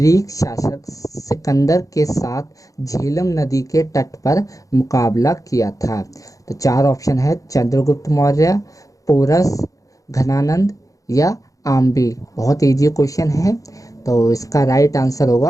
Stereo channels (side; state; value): right; late; 0.16 ms